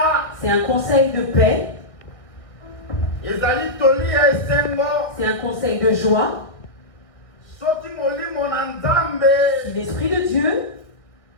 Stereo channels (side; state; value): right; late; 1.6 ms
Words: C'est un conseil de paix. Ezali toli ya esengo. C'est un conseil de joie. Soki molimo na Nzambe. Si l'Esprit de Dieu